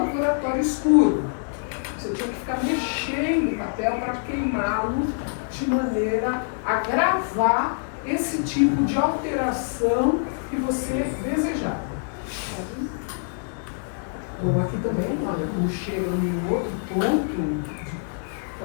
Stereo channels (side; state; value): right; silent; 57 dB below the other